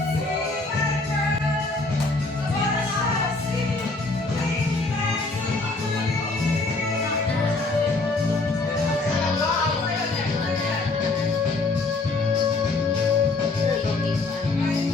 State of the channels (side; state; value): right; quieter; 3.4 dB